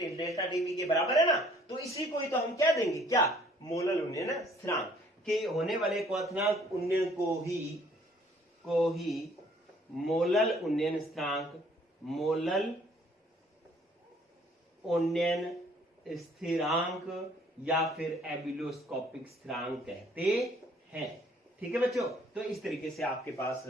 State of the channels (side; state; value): both; normal; correlation 0.59